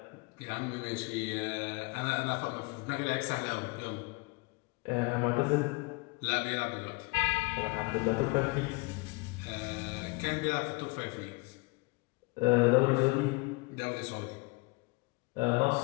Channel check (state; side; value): quieter; right; 26.3 dB